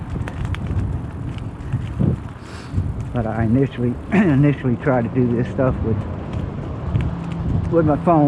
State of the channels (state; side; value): identical; both; correlation 1.00